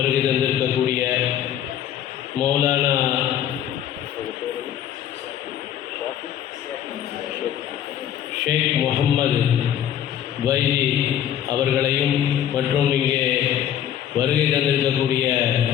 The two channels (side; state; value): right; quieter; 10.4 dB